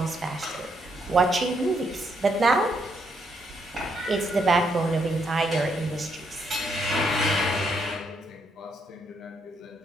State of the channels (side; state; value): both; normal; correlation 0.75